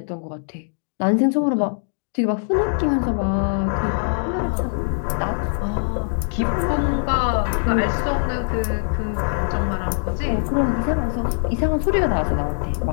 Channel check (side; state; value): right; silent; digital silence